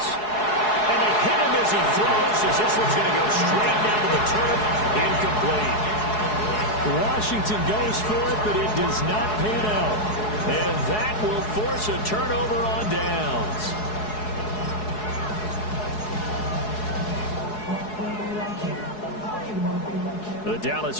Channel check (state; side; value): late; right; 4.7 ms